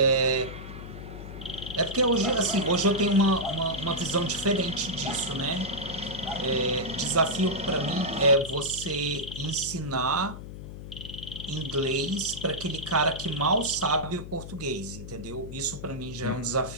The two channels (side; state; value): left; noise; hum, 11 dB below the sound